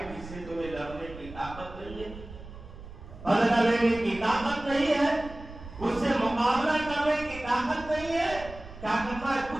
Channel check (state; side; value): noise; right; rumble, 15 dB below the sound